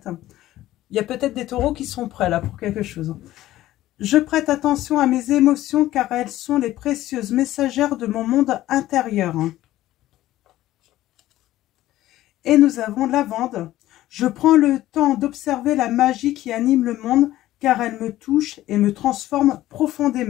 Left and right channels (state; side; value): quieter; right; 14.9 dB